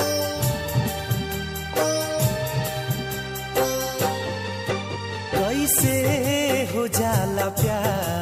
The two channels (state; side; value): identical; both; correlation 1.00